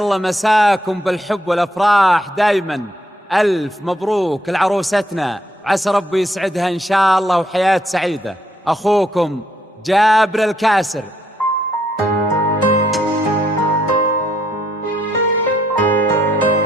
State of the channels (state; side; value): normal; both; correlation 0.72